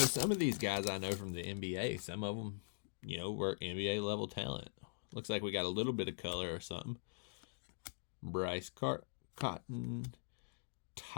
of these guys I know from the NBA, some of them, you know, were NBA level talent. Looks like we got a little bit of color or something. Bryce Cotton,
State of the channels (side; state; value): right; silent; digital silence